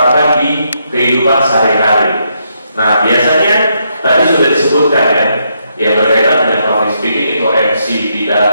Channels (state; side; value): inverted; both; correlation -0.77